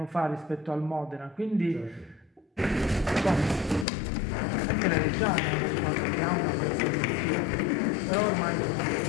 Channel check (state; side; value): drops out; right; at 3.9 s